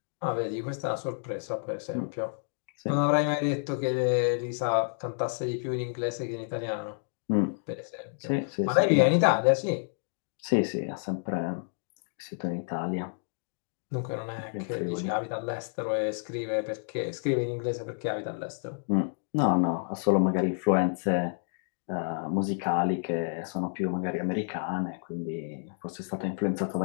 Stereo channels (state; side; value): silent; right; digital silence